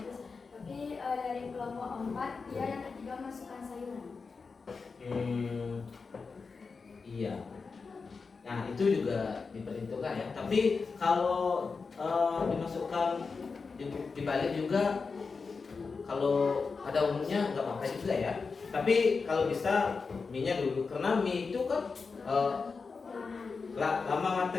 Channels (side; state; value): right; quieter; 4.7 dB